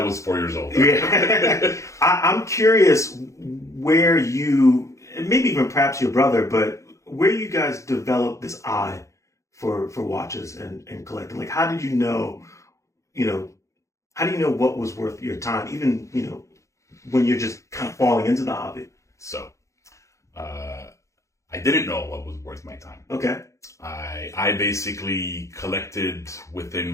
was 4 years old. Yeah. I'm curious where you, maybe even perhaps your brother, but where you guys developed this eye for watches and collecting. Like, how did you know what was worth your time, even when you're just kind of falling into the hobby? So I didn't know what was worth my time. Okay. I basically collected within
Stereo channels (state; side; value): late; right; 0.15 ms